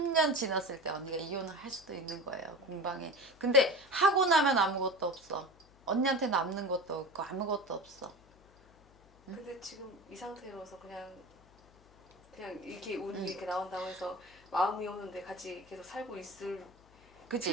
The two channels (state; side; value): noise; left; hum, 27 dB below the sound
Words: 지났을 때 언니가 이혼을 할 수도 있는 거예요. 공방에. 근데 하고 나면 아무것도 없어. 언니한테 남는 것도 없고 아무것도 없어. 근데 지금 이 상태로서 그냥 이렇게 운이 이렇게 나온다고 해서 마음이 오는데 같이 계속 살고 있을 그치?